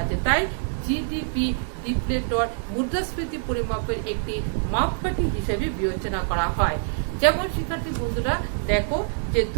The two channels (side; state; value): left; silent; 61 dB below the other